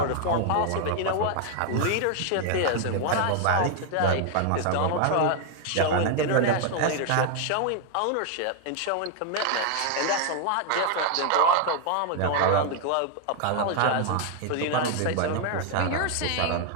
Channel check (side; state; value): both; different; correlation 0.00